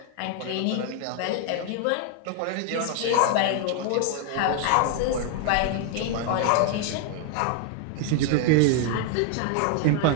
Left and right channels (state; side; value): different; both; correlation 0.00